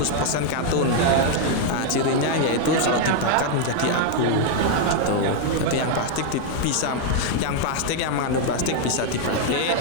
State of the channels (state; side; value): different; both; correlation 0.00